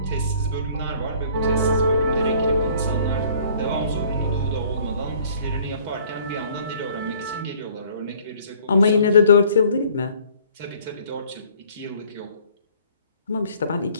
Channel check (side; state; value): both; inverted; correlation -0.56